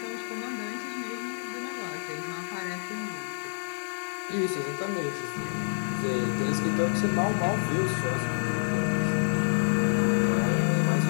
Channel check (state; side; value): silent; right; digital silence